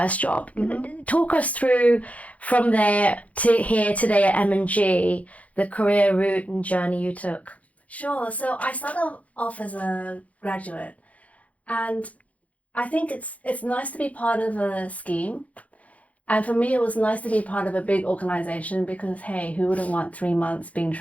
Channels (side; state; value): right; late; 0.068 ms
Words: job. Talk us through from there to here today at M&G, the career route and journey you took. Sure. So I started off as a graduate, and I think it's nice to be part of a scheme. And for me, it was nice to be part of a big organization, because, hey, who wouldn't want 3 months being